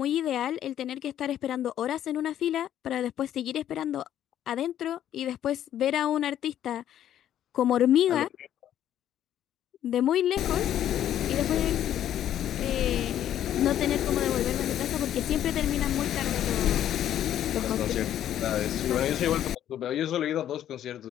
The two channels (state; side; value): quieter; right; 11.1 dB